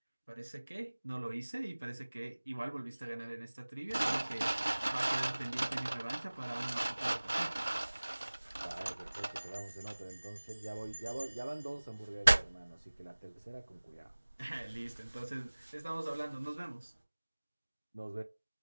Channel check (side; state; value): both; inverted; correlation -1.00